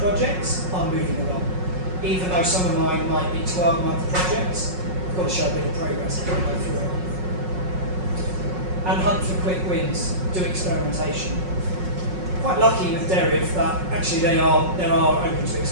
are moving along. Even though some of mine might be 12-month projects, you've got to show a bit of progress as you go through it. And hunt for quick wins. Do experimentation. Quite lucky with Deriv that actually they are open to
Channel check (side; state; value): left; late; 5.5 ms